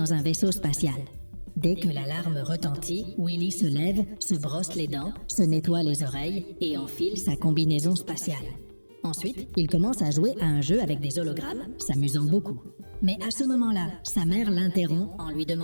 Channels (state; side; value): inverted; both; correlation -1.00